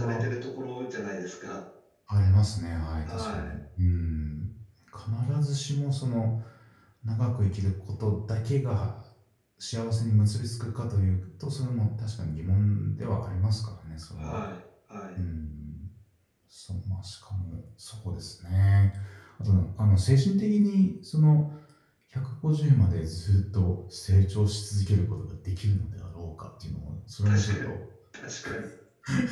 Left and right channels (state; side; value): identical; both; correlation 1.00